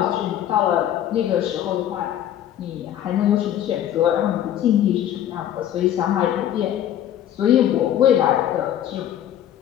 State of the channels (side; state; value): right; quieter; 11.0 dB